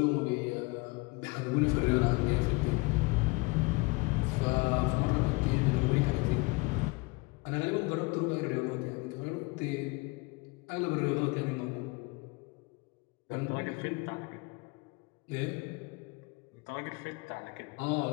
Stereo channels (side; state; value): right; quieter; 26.0 dB